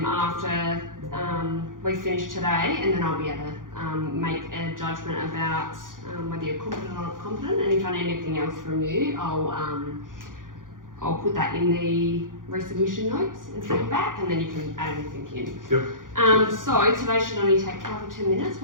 after we finish today, and then I'll be able to make a judgment about whether you're competent or not competent, and if I need anything else from you, I'll put that in the resubmission notes and send it back, and then you can add anything in. So today should only take 5 or 10 minutes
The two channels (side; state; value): left; late; 0.89 ms